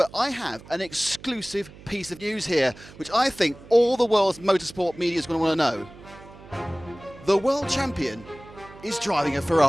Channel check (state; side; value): noise; right; hum, 20 dB below the sound